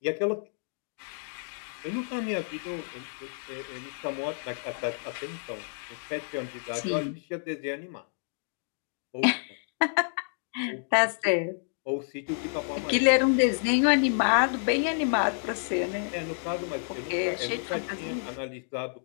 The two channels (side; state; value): right; silent; digital silence